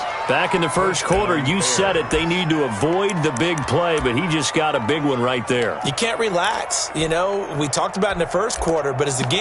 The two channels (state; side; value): identical; both; correlation 1.00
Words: Back in the first quarter, you said it, they need to avoid the big play, but he just got a big one right there. You can't relax. You know, we talked about in the first quarter, but as the